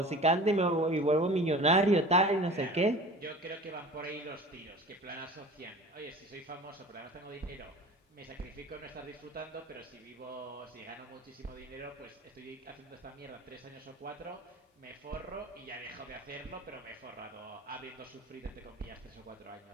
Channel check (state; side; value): normal; both; correlation 0.40